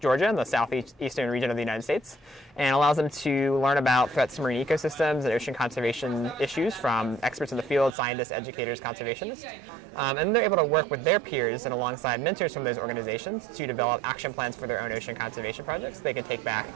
and the southeastern region of the United States, and allows them to learn about threats to marine ecosystems and ocean conservation issues from experts in the field, scientists, educators, conservationists. And they're able to work with their peers and alongside mentors from those organizations to develop action plans for their own ocean conservation projects they can take back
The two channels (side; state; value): left; drops out; at 8.0 s